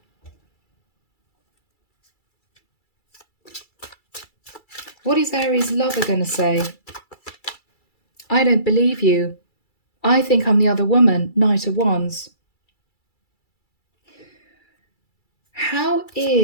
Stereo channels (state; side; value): late; right; 2.3 ms